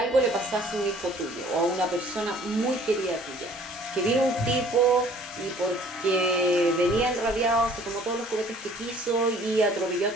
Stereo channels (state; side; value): normal; both; correlation 0.54